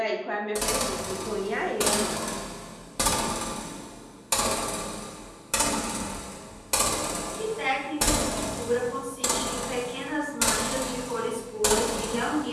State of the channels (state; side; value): identical; both; correlation 1.00